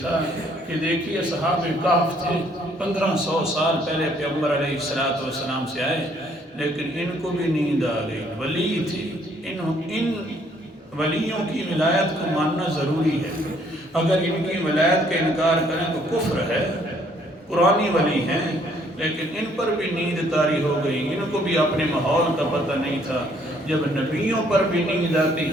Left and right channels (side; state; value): both; normal; correlation 0.64